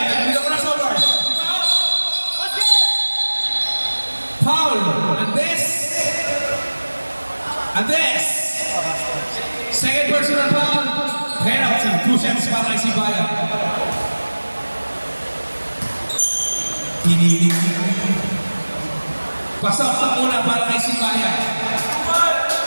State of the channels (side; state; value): both; inverted; correlation -1.00